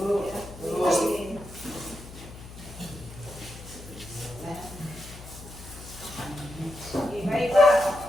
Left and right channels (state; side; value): noise; left; hum, 15 dB below the sound